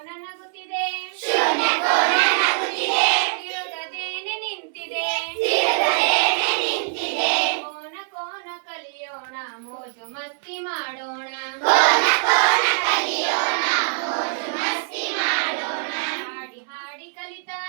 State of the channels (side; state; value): left; silent; 63 dB below the other